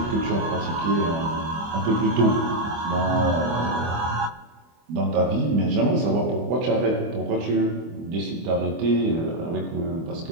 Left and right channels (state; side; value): late; left; 25 ms